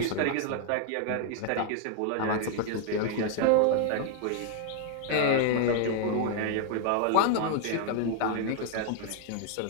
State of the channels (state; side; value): different; both; correlation 0.00